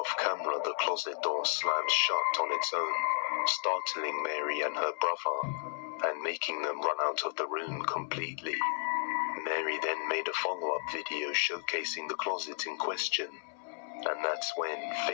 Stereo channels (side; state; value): right; silent; 56 dB below the other